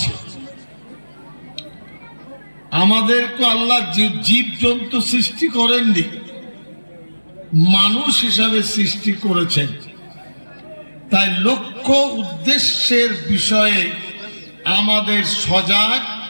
আমাদেরকে আল্লাহ জীব জন্তু সৃষ্টি করেননি, মানুষ হিসাবে সৃষ্টি করেছেন। তাই লক্ষ্য উদ্দেশ্যের বিষয়ে আমাদের সজাগ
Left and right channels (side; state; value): both; inverted; correlation -1.00